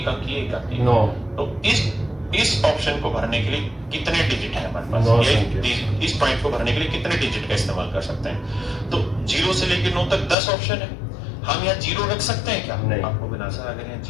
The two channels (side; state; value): right; drops out; at 10.4 s